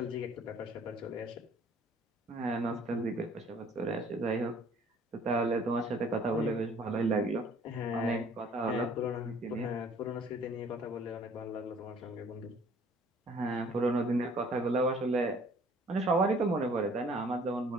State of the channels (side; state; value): both; normal; correlation 0.56